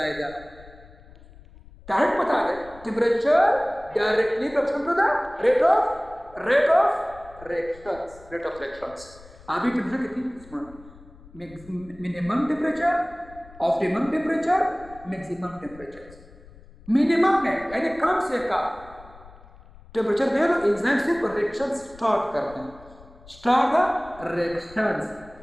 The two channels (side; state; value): left; noise; rumble, 22 dB below the sound